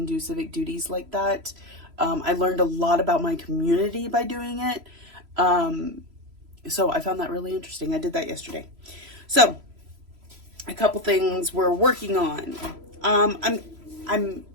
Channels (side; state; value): left; late; 3.0 ms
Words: do civic duties like that. I learned a lot about my community by doing it. So I found that really interesting. I did that yesterday. So, a couple things we're working on. I'm